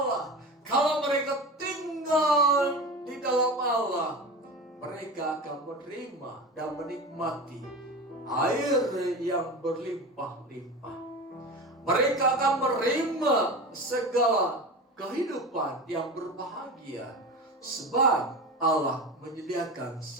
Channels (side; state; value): both; normal; correlation 0.29